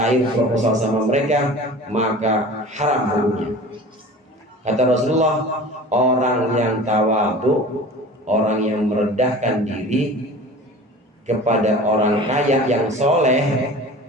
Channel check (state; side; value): normal; both; correlation 0.40